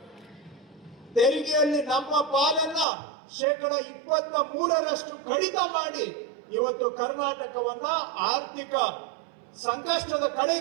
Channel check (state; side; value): drops out; left; at 2.9 s